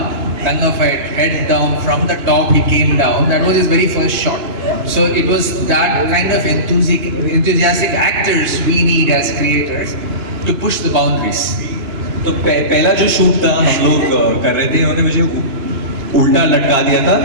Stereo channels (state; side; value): late; left; 2.9 ms